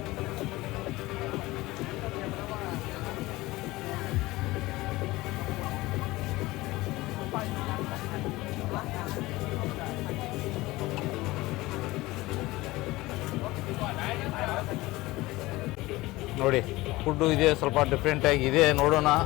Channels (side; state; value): right; quieter; 19.6 dB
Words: ನೋಡಿ ಫುಡ್ಡು ಇದೆ, ಸ್ವಲ್ಪ ಡಿಫ್ರೆಂಟಾಗಿ ಇದೆ. ನೋಡೋಣ,